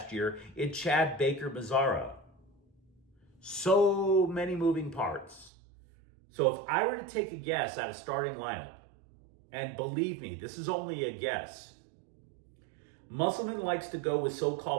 year in Chad Baker-Mazara. So many moving parts. So if I were to take a guess at a starting lineup, and believe me, this is only a guess, Musselman likes to go with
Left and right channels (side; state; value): left; drops out; at 5.5 s